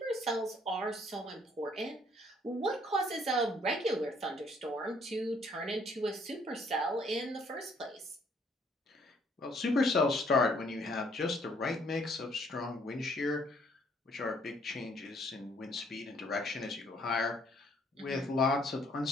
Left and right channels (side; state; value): both; normal; correlation 0.64